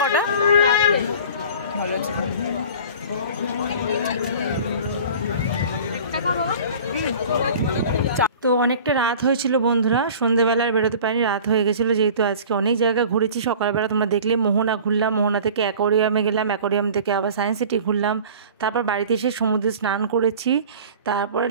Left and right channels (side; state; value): both; inverted; correlation -0.42